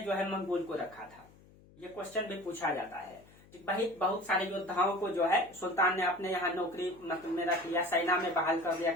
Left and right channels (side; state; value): left; noise; hum, 25 dB below the sound